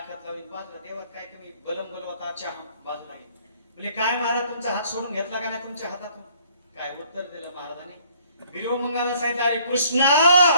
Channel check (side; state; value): both; inverted; correlation -0.60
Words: लावली बाजूला देवात काय कमी बलम बोलवता चहा बाजूला गेली. म्हणजे काय महाराज तुमचा हात सोडून घेतला का नाही तुमच्या हातातून? काय उत्तर दिलं महाराजांनी? बिरोमंगाला सांगितलं, अरे कृष्णा